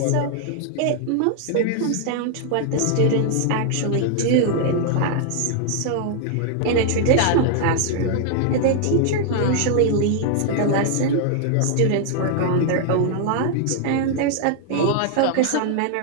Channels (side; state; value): both; different; correlation 0.00